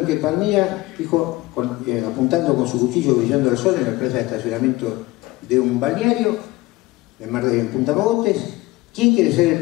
que Palmira dijo, apuntando con su cuchillo brillando al sol en la plaza de estacionamiento de un balneario en Punta Mogotes: ¿quién quiere ser el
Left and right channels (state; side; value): quieter; right; 19.7 dB